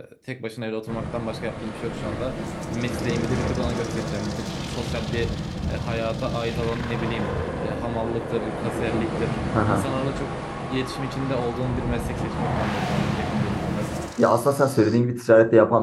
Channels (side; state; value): both; identical; correlation 1.00